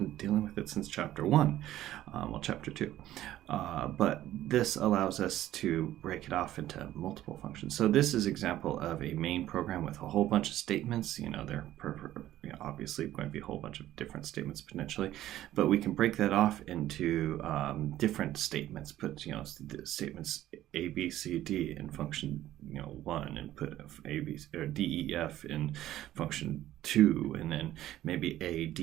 dealing with it since chapter 1, chapter 2. But this allows us to break it off into multiple functions. So this is an example of a main program with a whole bunch of statements. They're obviously going to be a whole bunch of different statements potentially, but we can break that off into different statements. Put the statements A, B, C, D in function 1, and put A, B, or D, E, F in function 2, and then maybe A, D,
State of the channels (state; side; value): quieter; left; 13.7 dB